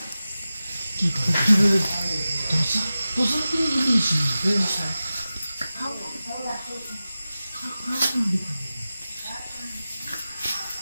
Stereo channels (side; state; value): both; inverted; correlation -0.95